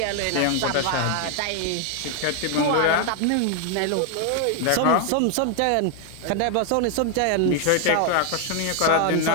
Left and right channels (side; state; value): both; different; correlation 0.00